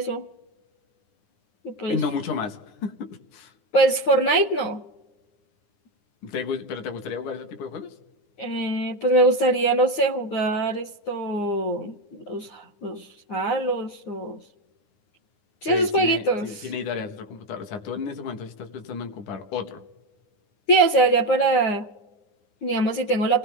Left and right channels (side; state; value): right; late; 9.7 ms